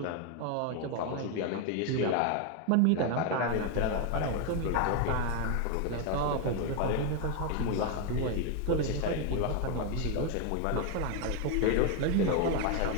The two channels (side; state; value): both; different; correlation 0.01